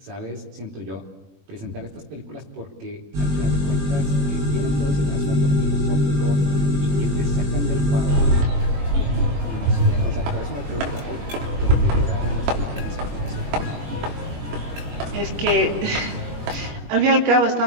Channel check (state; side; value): late; left; 21 ms